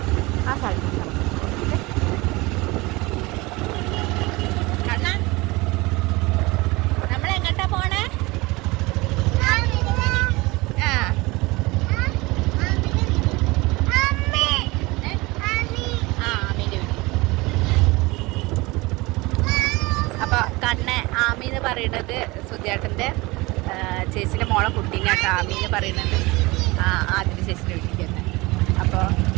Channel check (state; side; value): quieter; left; 22.8 dB